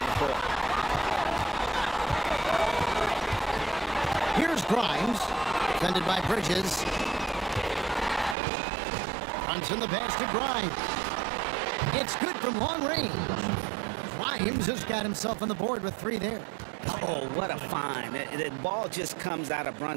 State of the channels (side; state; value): left; drops out; at 8.3 s